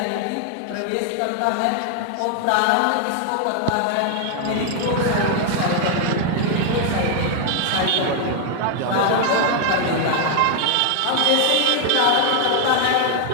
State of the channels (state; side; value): different; both; correlation 0.00